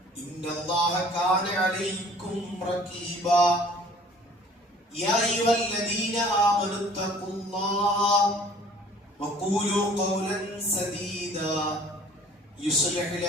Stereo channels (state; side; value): normal; both; correlation 0.52